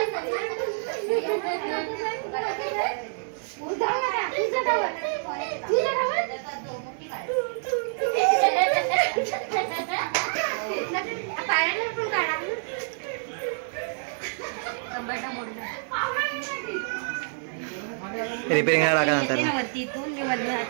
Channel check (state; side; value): silent; left; 60 dB below the other